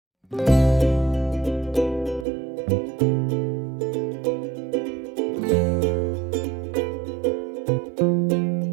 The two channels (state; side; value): drops out; left; at 2.2 s